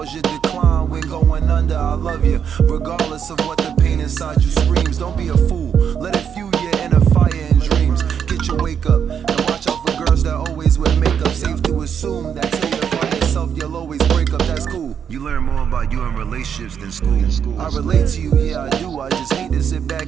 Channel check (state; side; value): quieter; left; 7.8 dB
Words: you decline. When going under, I love you, regardless of what the pain inside you screams. Don't be a fool, let it fuel your inner fire and dreams. Get your wake up, and watch out for girls that always wear makeup. Safe to assume that till you find yourself, you'll always break up, that's cool. You learn more about you in relationships than school. I relate to you, yeah I do, I just hate to sit